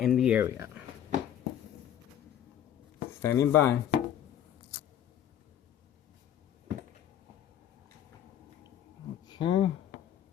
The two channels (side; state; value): right; quieter; 10.4 dB